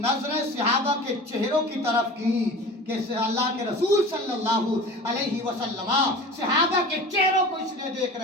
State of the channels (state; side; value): normal; both; correlation 0.37